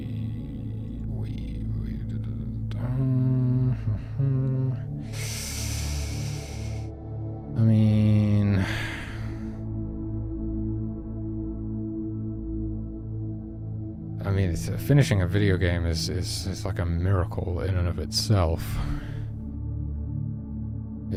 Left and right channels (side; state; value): both; identical; correlation 1.00